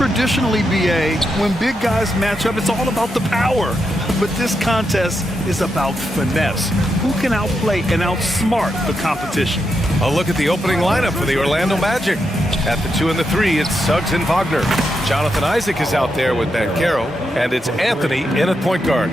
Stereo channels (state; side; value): normal; both; correlation 0.84